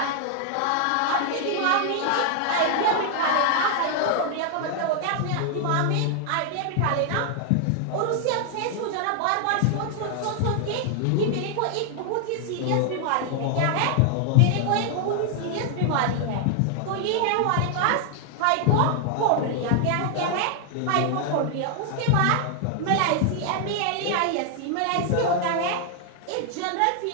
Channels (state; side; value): different; both; correlation 0.00